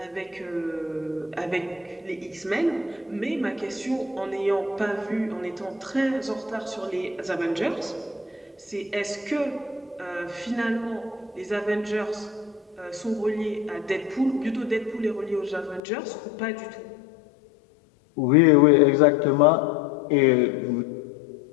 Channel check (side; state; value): right; drops out; at 15.8 s